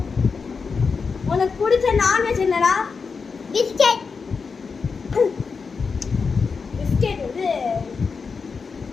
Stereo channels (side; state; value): right; quieter; 5.1 dB